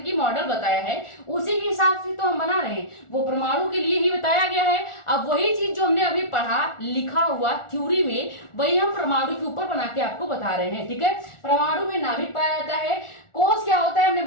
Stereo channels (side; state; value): right; late; 1.4 ms